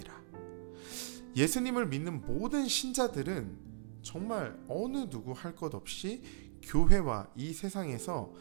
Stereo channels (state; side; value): silent; left; 54 dB below the other